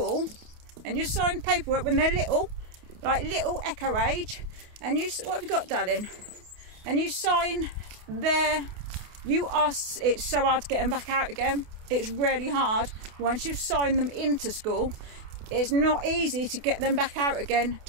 and you sign paperwork when they're little, like little Echo age, and you, what have you got, darling? And you sign there, it's so hard to get them back out again. It's really hard. Once you've signed them into school, it's not easy to get them back out again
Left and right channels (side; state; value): left; late; 28 ms